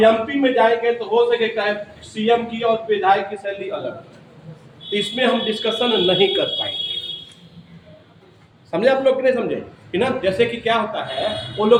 में जाएंगे तो हो सके सीएम की और विधायक की सैलरी अलग है, तो इसमें हम डिस्कशन नहीं कर पाएंगे, समझे आप लोग कि नहीं समझे, है ना। जैसे कि क्या होता है, वो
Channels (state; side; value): identical; both; correlation 1.00